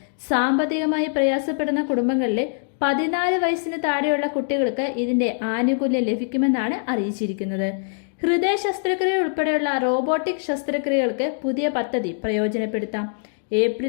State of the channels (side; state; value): right; silent; digital silence